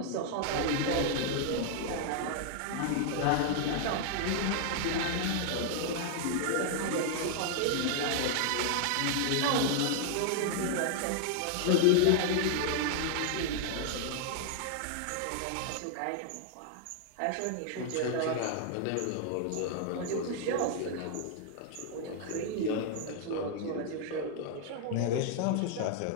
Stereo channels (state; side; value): different; both; correlation -0.01